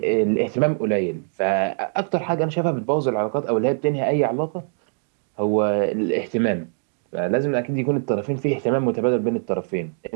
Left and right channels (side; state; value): left; silent; digital silence